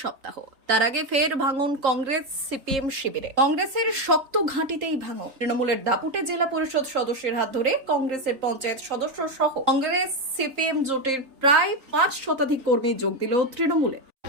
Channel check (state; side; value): late; left; 3.8 ms